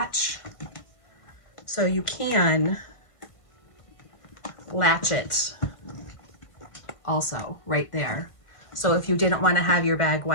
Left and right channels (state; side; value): late; right; 1.6 ms